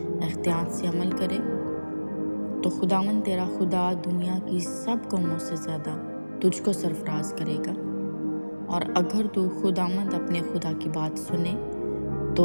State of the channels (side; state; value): both; inverted; correlation -1.00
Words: احتیاط سے عمل کرے، تو خداوند تیرا خدا دنیا کی سب قوموں سے زیادہ تجھ کو سرفراز کرے گا۔ اور اگر تو خداوند اپنے خدا کی بات سنے